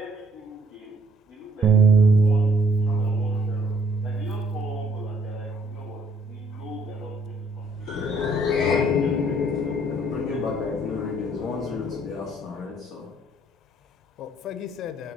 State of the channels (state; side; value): normal; both; correlation 0.64